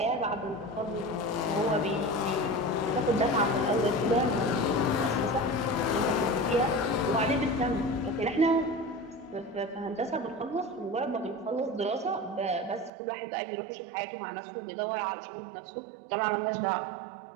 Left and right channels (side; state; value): left; drops out; at 12.9 s